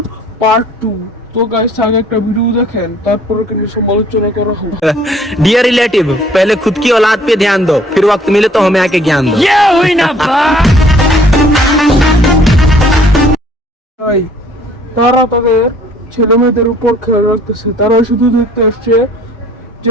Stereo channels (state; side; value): normal; both; correlation 0.58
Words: পার্ট 2। তো গাইস আগে একটা ভিডিও দেখেন, তারপর একে নিয়ে সমালোচনা করা হবে। डियर रिलेटिव, पहले खुद की औलाद पे ध्यान दो, फिर वक्त मिले तो हमें आके ज्ञान दो। ये हुई ना बात। তাই তারা তাদের ছেলে মেয়েদের উপর খেয়াল রাখতেছে, তারা শুধু দেখতে আসছে